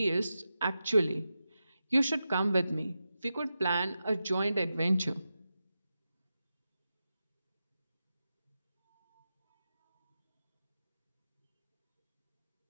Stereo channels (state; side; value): inverted; both; correlation -0.90